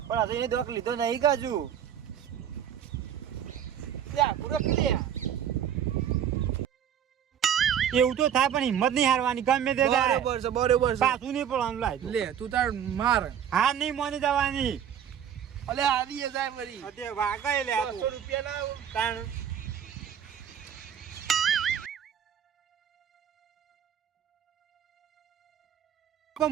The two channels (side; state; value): left; quieter; 9.1 dB